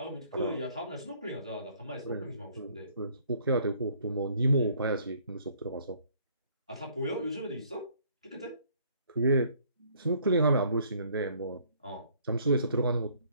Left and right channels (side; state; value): both; inverted; correlation -0.61